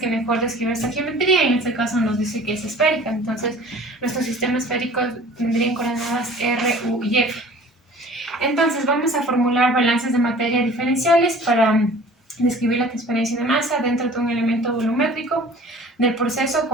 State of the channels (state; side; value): normal; both; correlation 0.47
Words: mejor describe esta geometría, y en este caso nos dice que es esférica. Entonces nuestro sistema esférico tendría coordenadas R, U y F. Entonces vamos a formular balances de materia diferenciales para describir la transferencia de masa dentro de un elemento volumétrico del proceso